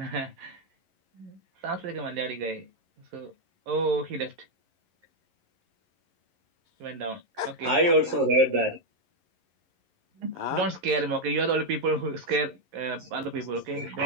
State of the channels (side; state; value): left; late; 11 ms